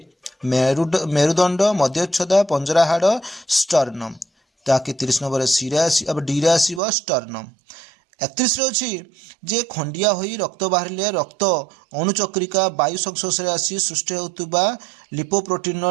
मेरुदंड मध्यच्छदा पंजरा हाड़ स्टर्नम। ताकि 30 नंबर सी रे अब डी रे आसीबो स्टर्नम। 31 अच्छी जे खंडिया होई रक्त बाहरिले रक्त अणुचक्रिका वायु संस्पर्श आसी सृष्टि होता लिपोप्रोटीन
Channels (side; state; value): left; drops out; at 6.8 s